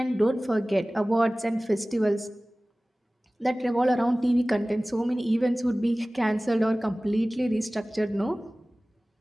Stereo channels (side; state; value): both; normal; correlation 0.98